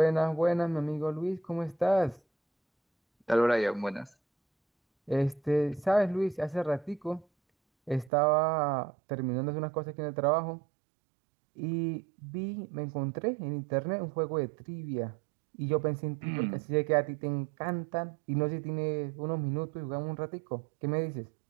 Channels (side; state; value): left; drops out; at 8.1 s